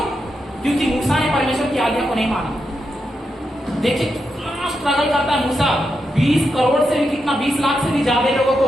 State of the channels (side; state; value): both; normal; correlation 0.85